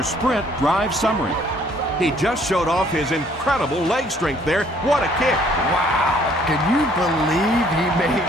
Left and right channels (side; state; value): both; normal; correlation 0.61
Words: sprint drive summary. He just showed off his incredible leg strength there. What a kick. Wow. Can you believe he made